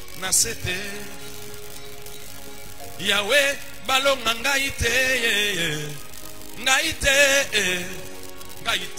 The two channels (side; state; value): both; identical; correlation 1.00